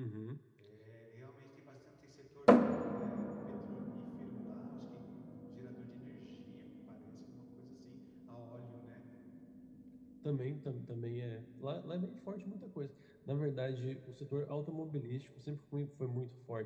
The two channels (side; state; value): both; identical; correlation 1.00